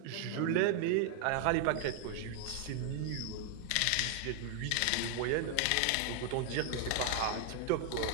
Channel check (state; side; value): different; both; correlation 0.00